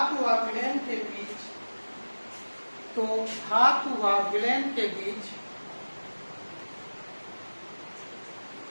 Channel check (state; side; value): inverted; both; correlation -1.00